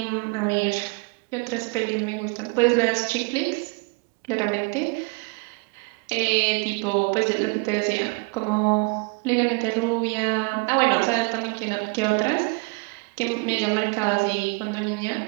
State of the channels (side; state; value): left; quieter; 31.2 dB